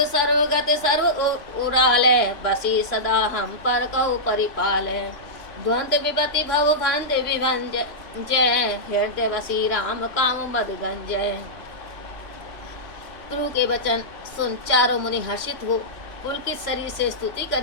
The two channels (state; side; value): late; right; 3.0 ms